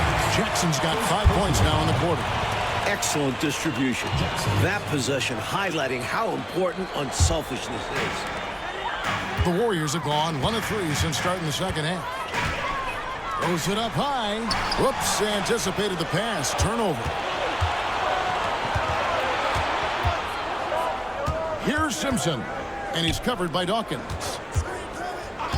Jackson's got 5 points now in the quarter. Excellent distribution. That possession highlighting how important unselfishness is. The Warriors have gone 1 of 3 since starting the second half. Throws it up high. Whoops, anticipated the pass. Turnover. Here's Simpson. And he's covered by Dawkins.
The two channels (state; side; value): identical; both; correlation 1.00